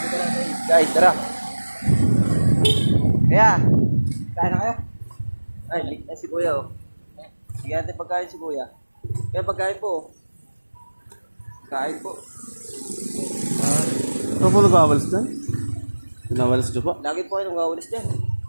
natin. Guys, tara. Kaya, kain na kayo? Ay, late na si Kuya, oh. Sige natin pagkain si Kuya. Kaya pagkain po, oh. Kain po. Ano po nag-awalis dyan? Pinawalis dyan po? Lagi po kayo nagwawalis dyan.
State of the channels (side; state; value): both; inverted; correlation -1.00